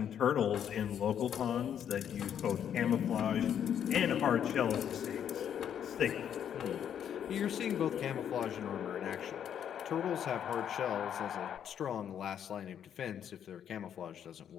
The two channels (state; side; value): quieter; right; 9.1 dB